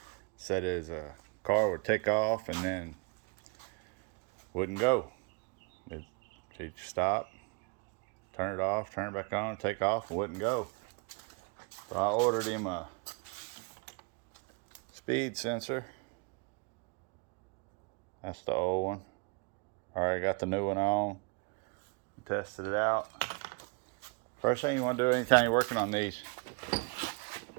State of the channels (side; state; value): left; quieter; 32.4 dB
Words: Said his car would take off and then wouldn't go. He'd stop, turn it off, turn it back on, take off, and wouldn't go. So I ordered him a speed sensor. That's the old one. Already got the new one on. Tested it out. First thing you want to do anytime you're working on these,